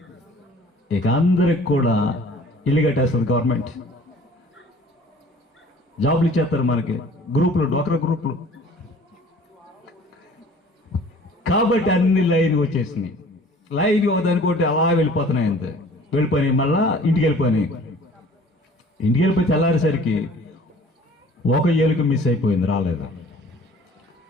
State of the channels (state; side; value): normal; both; correlation 0.50